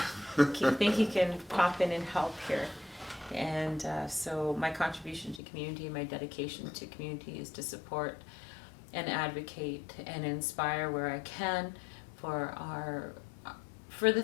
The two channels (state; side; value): drops out; right; at 5.4 s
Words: Do you think you can pop in and help here? And so my contribution to community, my dedication to community is to support and advocate and inspire where I can for the